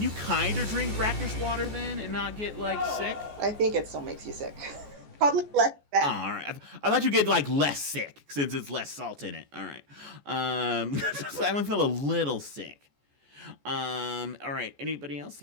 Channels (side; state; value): left; late; 14 ms